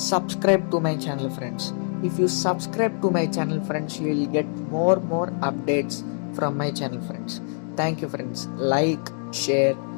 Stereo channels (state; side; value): silent; right; 62 dB below the other